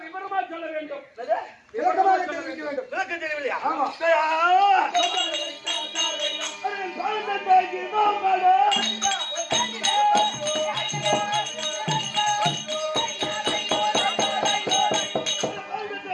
விவரமா சொல்ல வேண்டும். விளக்கம் தெரியவில்லையா?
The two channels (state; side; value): identical; both; correlation 1.00